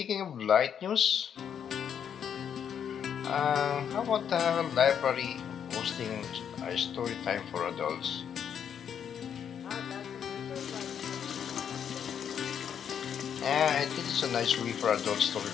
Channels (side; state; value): right; quieter; 8.3 dB